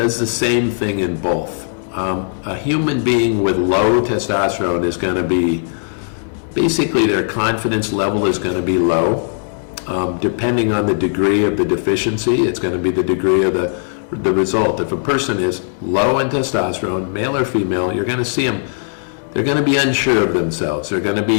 the same thing in both. A human being with low testosterone is going to be, basically their confidence level is going to be low. Depending on the degree of the deficiency, it's going to be the degree of the result. If a person is low in testosterone, male or female, you're going to see them, they're going to be unsure of themselves.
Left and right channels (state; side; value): silent; right; digital silence